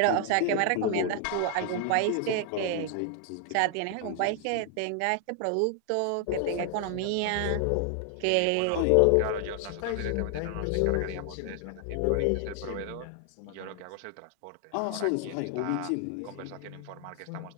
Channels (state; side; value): different; both; correlation 0.00